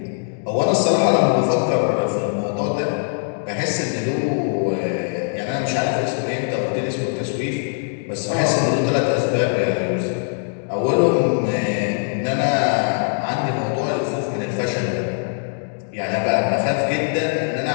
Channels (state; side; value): silent; right; digital silence